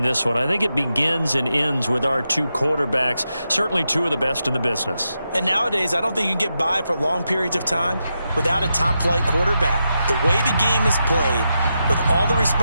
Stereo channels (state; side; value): inverted; both; correlation -0.87